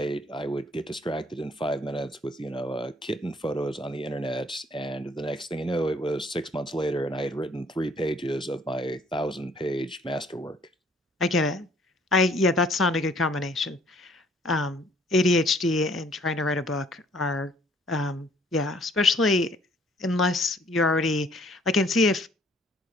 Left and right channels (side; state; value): both; normal; correlation 0.60